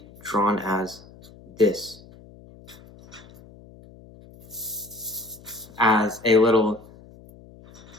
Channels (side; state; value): left; noise; hum, 22 dB below the sound